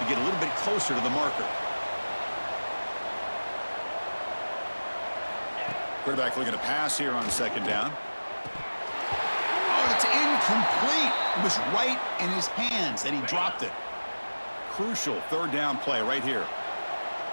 get a little bit closer to the marker. Quarterback looking to pass here on 2nd down. Oh, it's incomplete. It was right in his hands, and he dropped it. Crucial 3rd down play right here.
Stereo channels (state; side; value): inverted; both; correlation -1.00